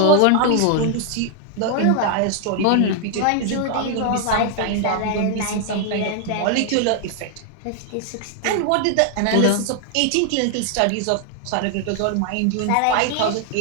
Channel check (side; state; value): both; different; correlation 0.00